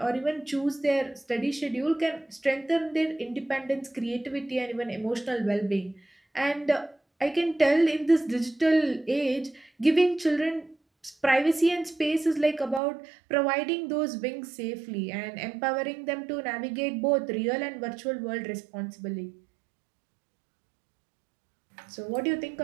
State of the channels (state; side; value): drops out; left; at 12.8 s